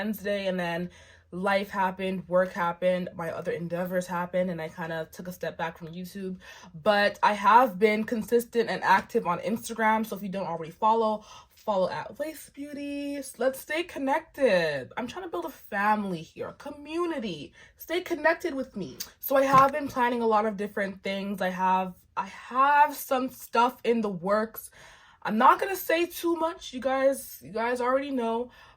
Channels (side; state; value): both; identical; correlation 1.00